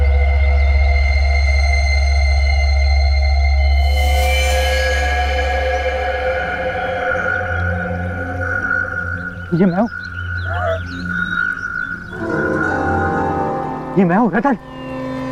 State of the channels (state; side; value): identical; both; correlation 1.00